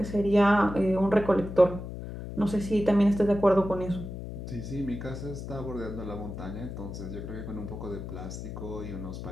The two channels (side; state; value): left; noise; hum, 8 dB below the sound